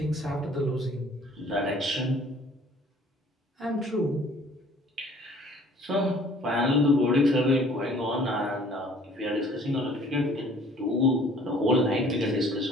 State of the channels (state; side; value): normal; both; correlation 0.54